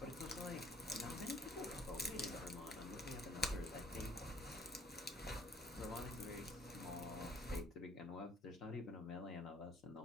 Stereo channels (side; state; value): both; normal; correlation 0.59